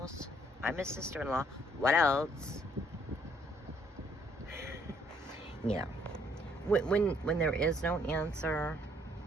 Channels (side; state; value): both; normal; correlation 0.66